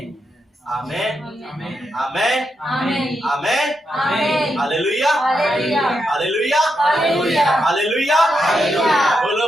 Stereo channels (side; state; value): both; normal; correlation 0.84